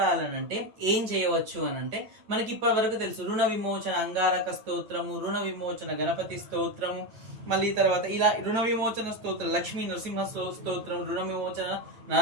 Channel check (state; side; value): late; left; 9.0 ms